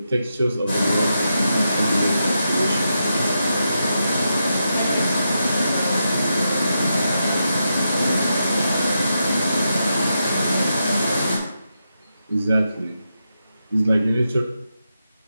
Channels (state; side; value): inverted; both; correlation -0.85